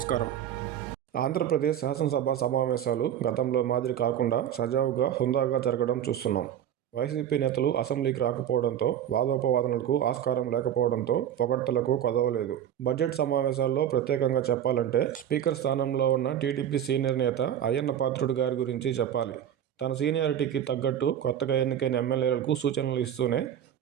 ఆంధ్రప్రదేశ్ శాసనసభ సమావేశాలు గతంలో మాదిరి కాకుండా సజావుగా, హుందాగా జరగడం చూస్తున్నాం. వైసీపీ నేతలు అసెంబ్లీకి రాకపోవడంతో, వాదోపవాదనలకు ఆస్కారం లేకపోవడంతో పొగడ్తలకు కొదవలేదు. బడ్జెట్ సమావేశాల్లో ప్రత్యేకంగా చెప్పాలంటే స్పీకర్ స్థానంలో ఉన్న టీడీపీ సీనియర్ నేత అయ్యన్న పాత్రుడు గారి గురించి చెప్పాలి. తన సీనియారిటీకి తగ్గట్టు కొత్తగా ఎన్నికైన ఎమ్మెల్యేలకు సూచనలు ఇస్తూనే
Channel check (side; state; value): left; quieter; 10.2 dB